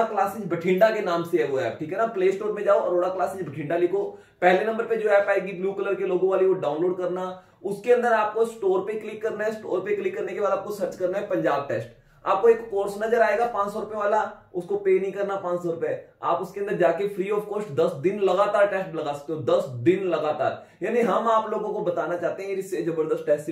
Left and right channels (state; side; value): identical; both; correlation 1.00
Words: क्लासेस बठिंडा के नाम से है वो ऐप। ठीक है ना। प्ले स्टोर में जाओ, अरोड़ा क्लासेस बठिंडा लिखो, पहले नंबर पे जो ऐप आएगी ब्लू कलर के लोगो वाली, वो डाउनलोड करना। उसके अंदर आपको स्टोर पे क्लिक करना है। स्टोर पे क्लिक करने के बाद आपको सर्च करना है पंजाब टेस्ट। आपको एक कोर्स नजर आएगा 500 रुपए वाला, उसको पे नहीं करना 500 रुपए। आप उसके अंदर जाके फ्री ऑफ कॉस्ट 10 दिन लगातार टेस्ट लगा सकते हो, 10 दिन लगातार। यानी हम आप लोगों को बताना चाहते हैं इससे जबरदस्त टेस्ट